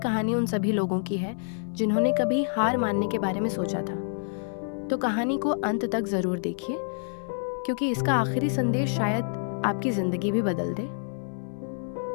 उन सभी लोगों की है जिन्होंने कभी हार मानने के बारे में सोचा था। तो कहानी को अंत तक ज़रूर देखिए, क्योंकि इसका आखिरी संदेश शायद आपकी ज़िंदगी भी बदल दे।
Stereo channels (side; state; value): right; silent; 60 dB below the other